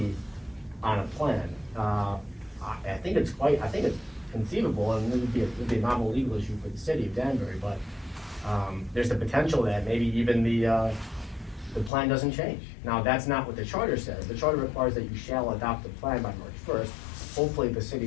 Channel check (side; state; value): right; drops out; at 11.9 s